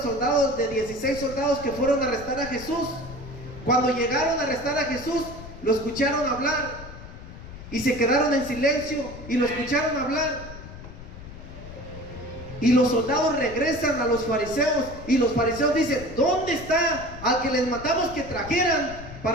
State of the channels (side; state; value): left; noise; rumble, 14 dB below the sound